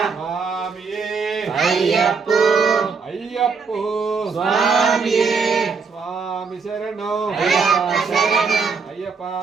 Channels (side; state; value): left; quieter; 5.2 dB